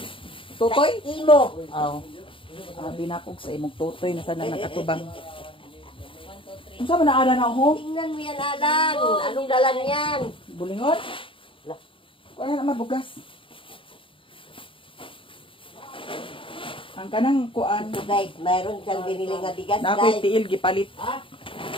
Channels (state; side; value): late; right; 0.25 ms